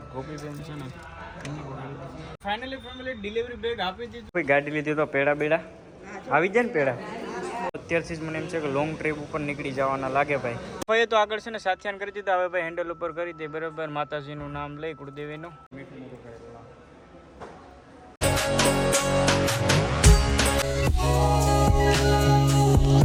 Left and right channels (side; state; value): both; identical; correlation 1.00